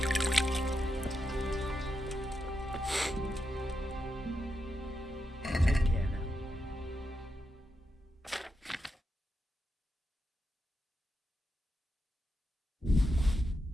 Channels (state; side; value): normal; both; correlation 0.86